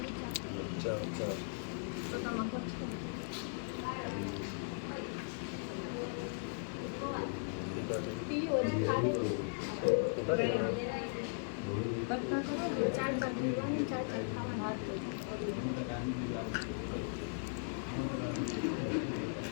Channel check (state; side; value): silent; right; digital silence